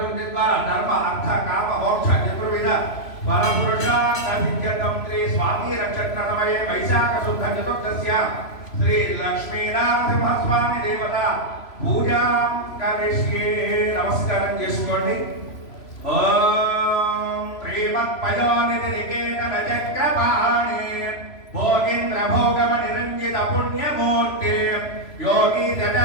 द्वारा धर्म अर्थ काम मोक्ष चतुर्विध वरपुरुषार्थ सिद्ध्यर्थं श्री स्वामी नक्षत्रतमये वैशाख शुद्ध चतुर्दश्य श्री लक्ष्मीनरसिंहस्वामी देवता पूजा करिष्ये नमस्कारं చేసుకోండి ओम श्रीमत्पयोनिधिनिकेतन चक्रपाणि भोगीन्द्र भोगम निरंजित पुण्यमूर्ति योगी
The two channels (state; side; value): late; right; 3.0 ms